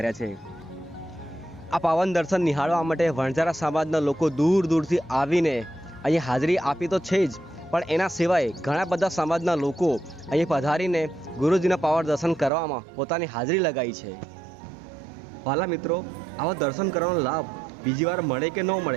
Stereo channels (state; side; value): drops out; left; at 12.5 s